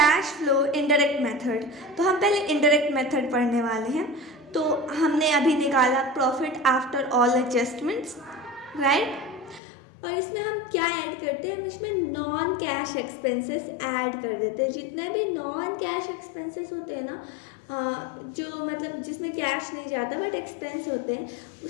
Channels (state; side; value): drops out; right; at 9.6 s